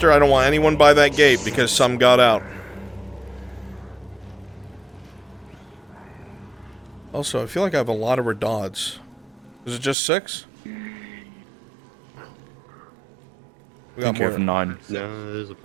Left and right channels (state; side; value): drops out; left; at 10.0 s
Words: I don't want anyone by that gate because some got out. Also, I feel like I have a lot of redods. Is it just 6? We got more than 9. No,